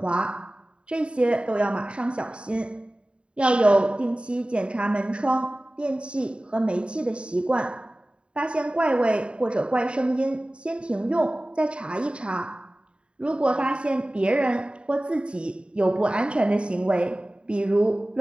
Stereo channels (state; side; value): late; left; 0.055 ms